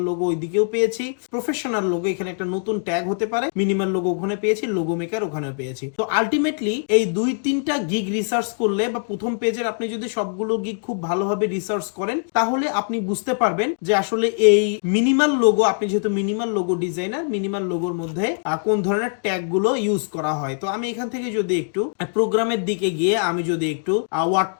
লোগো ওই দিকেও পেয়েছি, প্রফেশনাল লোগো এখানে একটা নতুন ট্যাগ হতে পারে, মিনিমাল লোগো ওখানে পেয়েছি, লোগো মেকার ওখানেও পেয়েছি। তো আলটিমেটলি এই 2-3টা গিগ রিসার্চ করলে বা প্রথম পেজের আপনি যদি সবগুলো গিগ খুব ভালোভাবে রিসার্চ করেন তাহলে আপনি বুঝতে পারবেন যে আসলে এই মিনিমাল লোগো, আপনি যেহেতু মিনিমাল লোগো ডিজাইনার, মিনিমাল লোগোর মধ্যে কোন ধরনের ট্যাগ গুলো ইউজ করা হয়। তো আমি এখান থেকে যদি একটু প্রোগ্রামের দিকে গিয়ে আমি যদি একটু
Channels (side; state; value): right; silent; digital silence